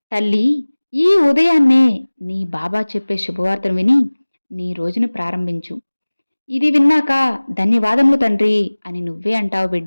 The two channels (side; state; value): both; inverted; correlation -1.00